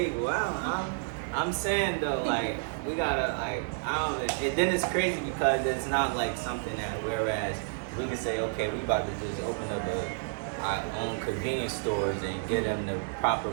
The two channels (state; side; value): silent; left; digital silence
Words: wow. I'm saying though, like we gotta like I don't. And then it's crazy because it's not like something that whereas we can say okay, we about to just open up our own convenience stores and get them the proper